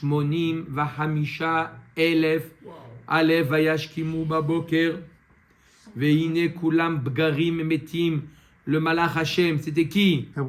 vahamisha elef alef vayashkimu baboker. Veine kulam bgarim metim. Le malach Hashem, c'était qui?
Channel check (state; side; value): identical; both; correlation 1.00